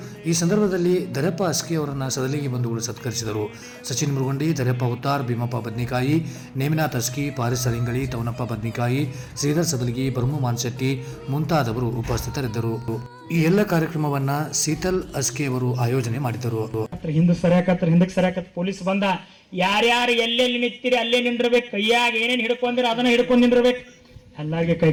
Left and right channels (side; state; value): both; identical; correlation 1.00